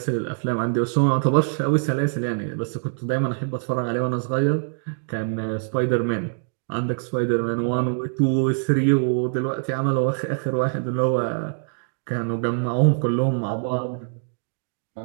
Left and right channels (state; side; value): silent; left; digital silence